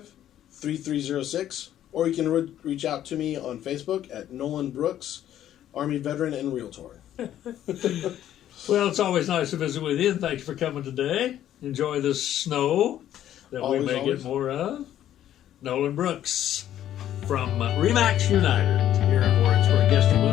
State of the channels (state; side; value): quieter; right; 11.6 dB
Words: or you can reach out to me on Facebook at Nolan Brooks, Army Veteran and Realtor. Well, it's always nice to visit with you, and thank you for coming today. Enjoy the snow that we may get more of. Nolan Brooks from Remax United here in Warrensburg, guesting